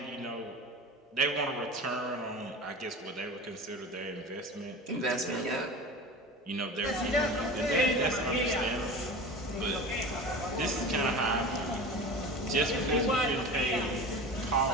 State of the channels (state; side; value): normal; both; correlation 0.33